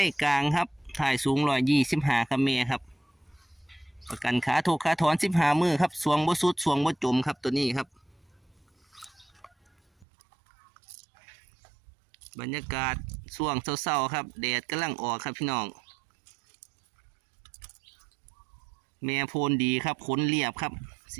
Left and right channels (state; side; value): drops out; left; at 10.1 s